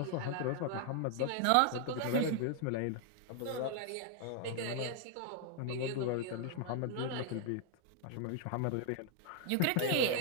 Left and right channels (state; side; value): different; both; correlation 0.00